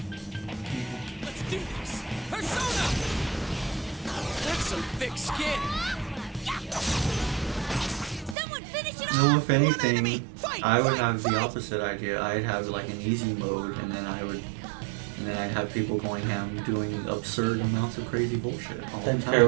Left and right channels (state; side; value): drops out; left; at 8.3 s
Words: Let's do this. Persona! That's some thick skin. Someone finish it No, off! if anything, I would have the opposite idea. I'd have like an easy mode, and then I'd have people going ham doing absurd amounts of crazy bullshit all the Then time.